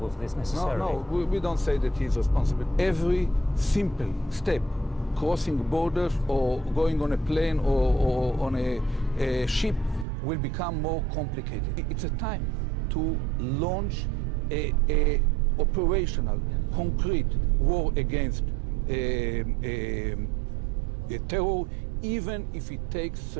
for this necessarily. No, we don't say that he's responsible. Every simple step, crossing borders or going on a plane or on a ship, will become more complicated. It's a time to launch a operational, concrete war against terror, even if it takes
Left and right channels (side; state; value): left; drops out; at 10.1 s